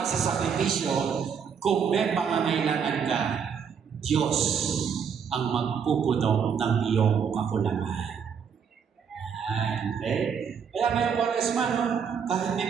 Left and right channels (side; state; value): left; quieter; 6.9 dB